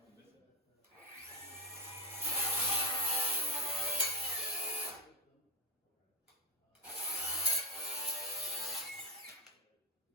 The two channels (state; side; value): normal; both; correlation 0.07